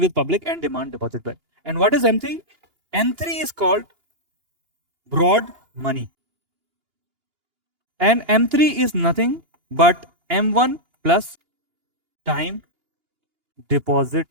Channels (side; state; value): left; late; 2.8 ms